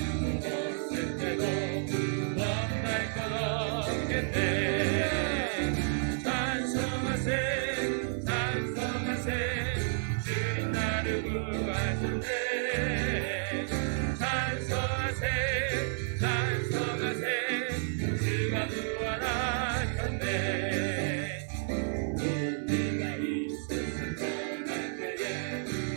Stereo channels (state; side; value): silent; left; 55 dB below the other